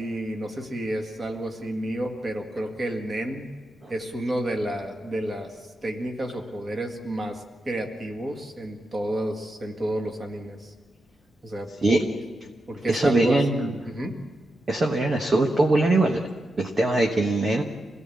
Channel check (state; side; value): normal; both; correlation 0.87